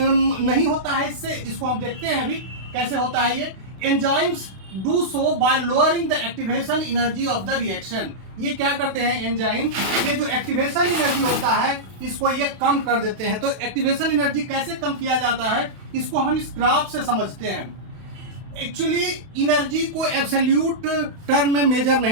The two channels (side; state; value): left; late; 32 ms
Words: नहीं होता है इससे, इसको हम देखते हैं अभी कैसे होता है ये। Enzymes do so bye lowering the activation energy of the reaction. ये क्या करते हैं एंजाइम? ये जो एक्टिवेशन एनर्जी होता है इसको ये कम कर देते हैं। तो एक्टिवेशन एनर्जी कैसे कम किया जाता है, इसको हम इस ग्राफ से समझते हैं। एक्चुअली एनर्जी को एब्सोल्यूट टर्म में मेजर